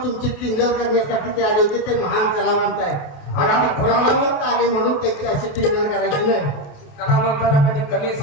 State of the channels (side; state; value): right; late; 28 ms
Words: तुमची टिंगल करण्यासाठी ते आले होते. ते महान कलावंत आहे आणि आम्ही कलावंत आले म्हणून त्यांची अशी टिंगल करायची नाही. कलावंताला कधी कमी